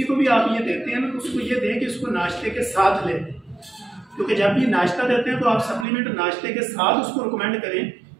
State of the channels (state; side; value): drops out; left; at 5.9 s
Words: को भी आप ये देते हैं ना, तो उसको ये दें कि इसको नाश्ते के साथ लें, क्योंकि जब भी नाश्ता देते हैं तो आप सप्लीमेंट नाश्ते के साथ उसको रिकमेंड करें,